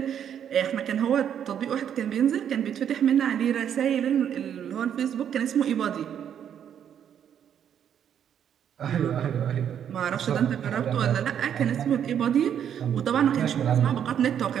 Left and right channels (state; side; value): quieter; left; 9.1 dB